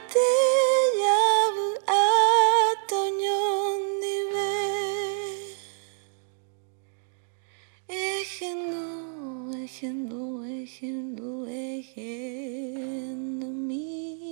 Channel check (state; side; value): silent; left; 60 dB below the other